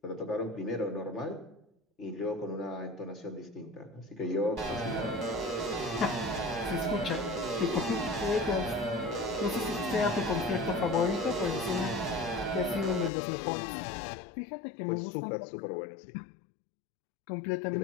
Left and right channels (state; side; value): drops out; right; at 13.1 s